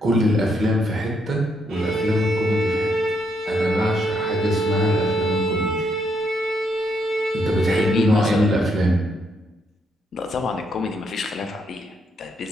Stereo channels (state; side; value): normal; both; correlation 0.75